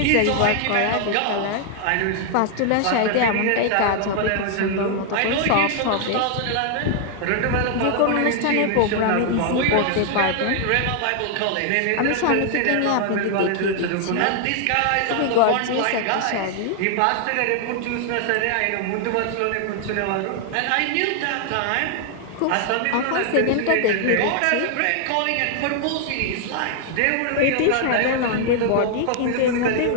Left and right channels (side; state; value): both; different; correlation 0.00